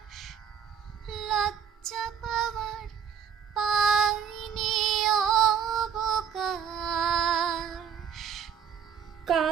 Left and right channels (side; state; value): left; quieter; 7.9 dB